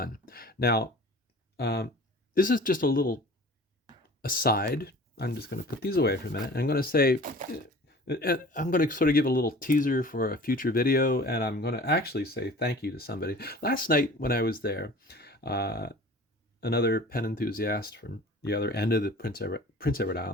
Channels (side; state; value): both; normal; correlation 0.44